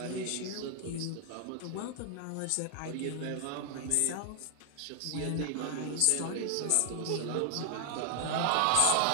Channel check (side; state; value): both; different; correlation 0.00